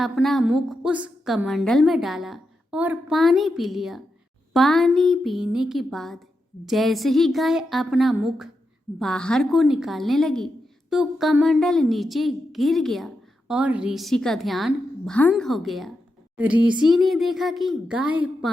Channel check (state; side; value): normal; both; correlation 0.87